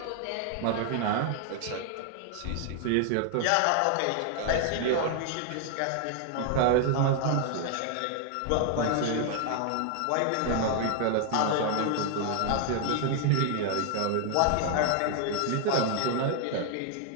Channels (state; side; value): different; both; correlation 0.00